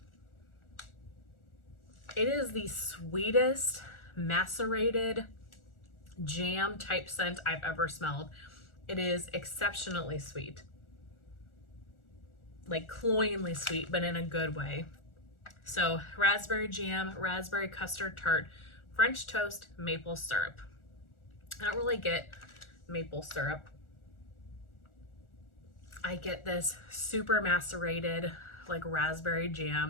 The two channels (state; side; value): late; right; 1.4 ms